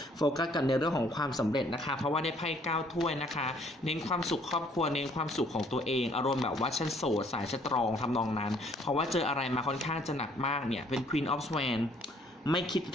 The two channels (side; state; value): both; normal; correlation 0.62